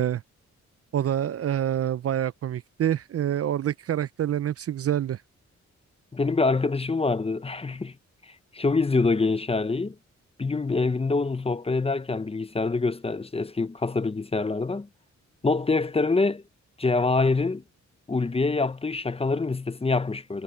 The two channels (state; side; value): normal; both; correlation 0.57